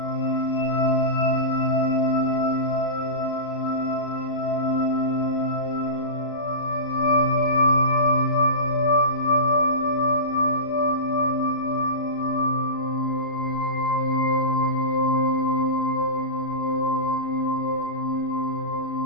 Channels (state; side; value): late; right; 34 ms